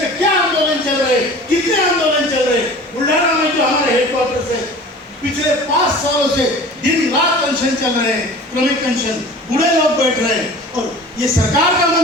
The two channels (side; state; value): both; normal; correlation 0.41